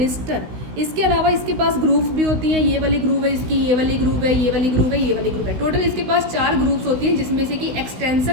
इसके अलावा इसके पास ग्रूव्स भी होती हैं, ये वाली ग्रूव है इसकी, ये वाली ग्रूव है, ये वाली ग्रूव है, ये वाली ग्रूव है। टोटल इसके पास 4 ग्रूव्स होती हैं, जिसमें से कि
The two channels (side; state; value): left; late; 16 ms